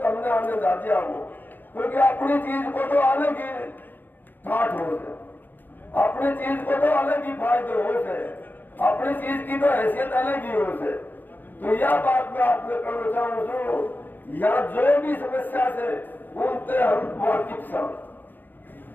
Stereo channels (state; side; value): late; right; 0.090 ms